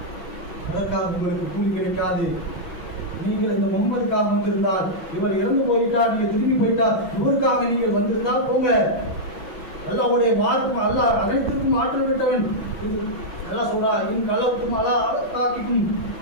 அதற்காக உங்களுக்கு கூலி கிடைக்காது. நீங்கள் இந்த முகமதுக்காக வந்திருந்தால், இவர் இறந்து போயிட்டார், நீங்க திரும்பி போயிட்டார், இவருக்காக நீங்கள் வந்திருந்தால் போங்க. அல்லாஹ்வுடைய வாழ்க்கை, அல்லாஹ் அனைத்திற்கும் ஆற்றல் விட்டவன், எல்லாம் சொல்றா இன் கலவுக்கும் அலா தாக்கிக்கும்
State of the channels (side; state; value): right; late; 5.8 ms